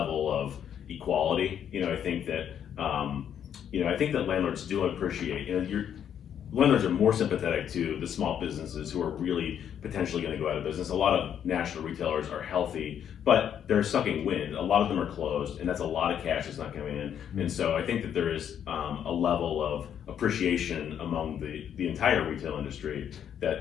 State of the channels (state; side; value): quieter; right; 9.1 dB